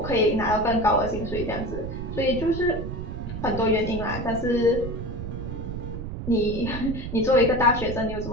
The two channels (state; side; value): noise; right; rumble, 7 dB below the sound